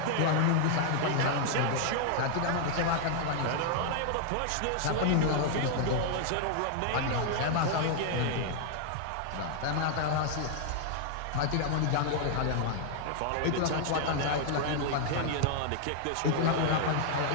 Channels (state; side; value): different; both; correlation 0.00